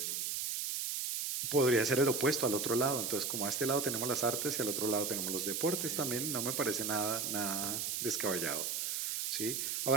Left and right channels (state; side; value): noise; right; hiss, 1 dB below the sound